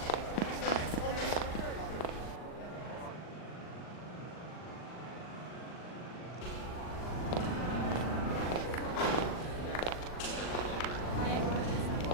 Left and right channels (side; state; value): right; late; 39 ms